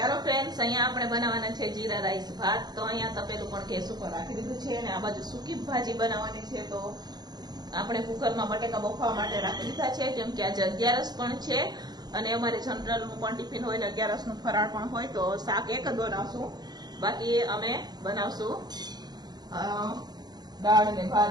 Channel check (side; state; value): left; late; 0.20 ms